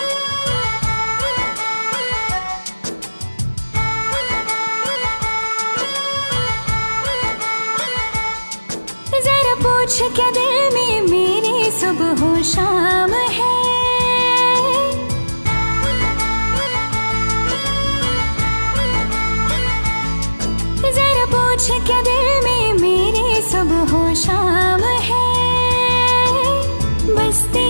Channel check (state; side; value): inverted; both; correlation -1.00